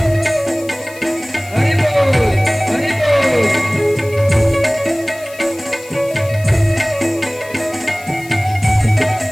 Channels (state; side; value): noise; left; hiss, 20 dB below the sound